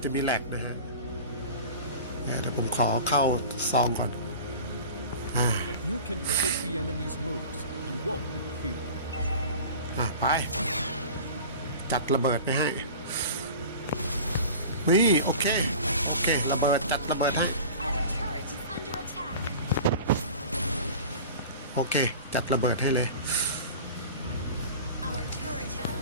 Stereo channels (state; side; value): inverted; both; correlation -0.38